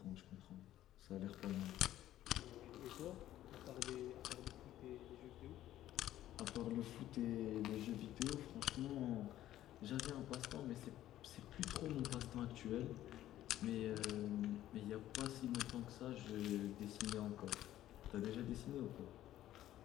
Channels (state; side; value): quieter; right; 13.2 dB